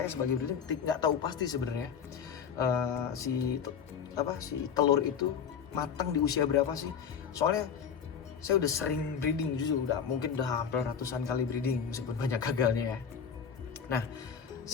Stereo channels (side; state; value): right; quieter; 7.3 dB